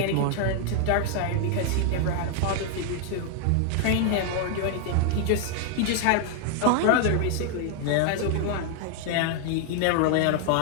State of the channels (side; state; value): both; different; correlation 0.00